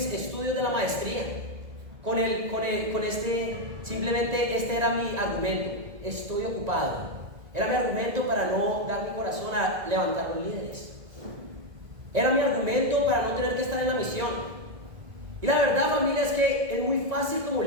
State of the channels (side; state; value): left; late; 1.9 ms